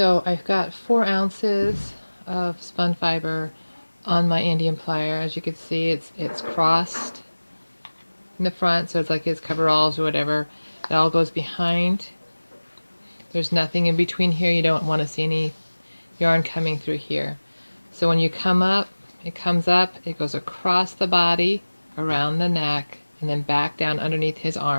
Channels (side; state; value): both; inverted; correlation -1.00